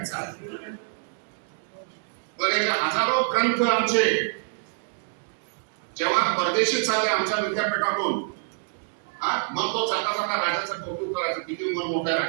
पण हे हजारो ग्रंथ आमचे जेव्हा परदेशी चालले आमच्या विद्यापीठातून, मग तो जाता जाता राजाचं कौतुक करायचं, किती मन मोठ्या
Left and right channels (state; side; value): silent; left; digital silence